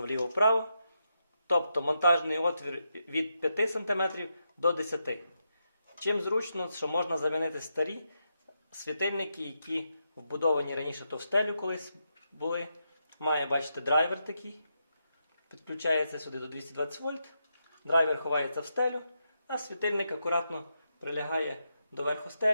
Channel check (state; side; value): inverted; both; correlation -0.83